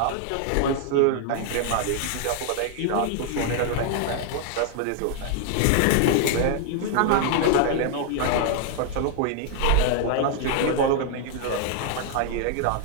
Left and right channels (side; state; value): both; different; correlation 0.00